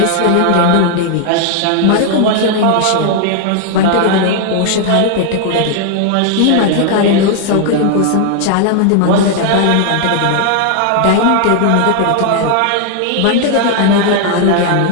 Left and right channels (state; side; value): different; both; correlation 0.00